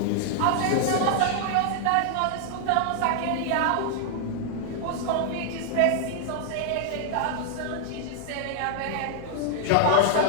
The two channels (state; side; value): different; both; correlation 0.00